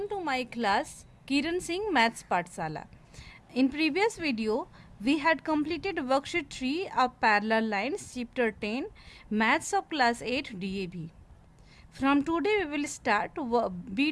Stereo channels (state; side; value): identical; both; correlation 1.00